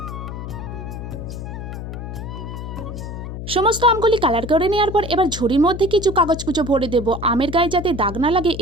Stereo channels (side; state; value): left; noise; hum, 8 dB below the sound